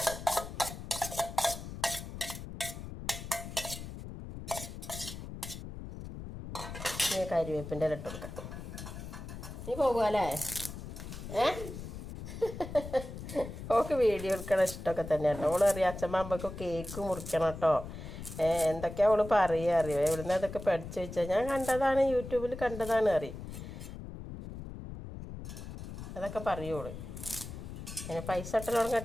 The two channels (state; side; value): noise; left; rumble, 10 dB below the sound